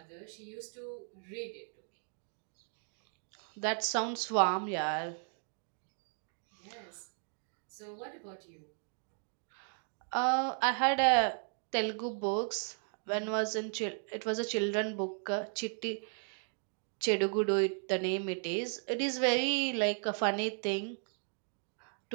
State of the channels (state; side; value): silent; left; 54 dB below the other